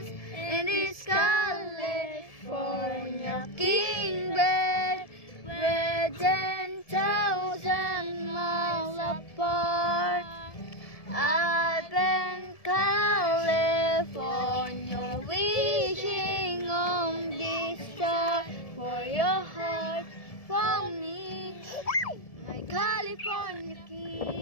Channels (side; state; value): right; late; 1.7 ms